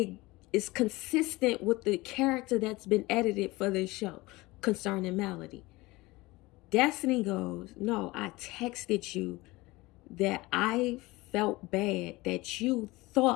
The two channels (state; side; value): quieter; right; 21.2 dB